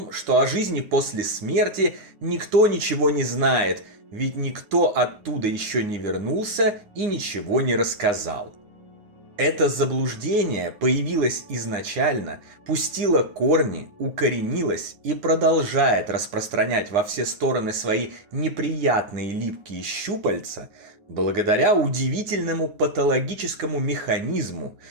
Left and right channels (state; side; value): late; left; 9.6 ms